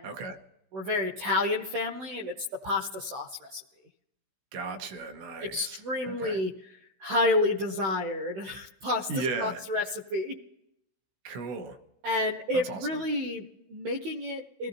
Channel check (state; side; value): late; left; 16 ms